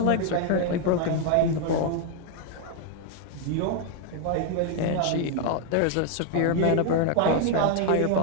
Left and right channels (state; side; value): different; both; correlation 0.00